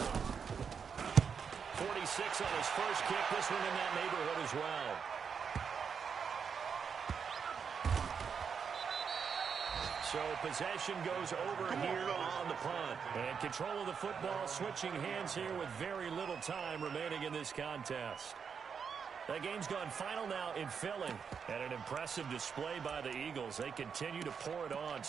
On his first kick, this one in that neighborhood as well. So possession goes over here on the punt. And control of the football, switching hands here with very little time remaining in this contest. That game's gone final now in Philly. And an impressive display by the Eagles. They continue to pour it on,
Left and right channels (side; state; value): left; quieter; 6.5 dB